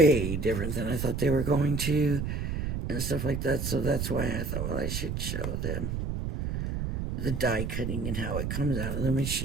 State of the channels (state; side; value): noise; right; rumble, 2 dB below the sound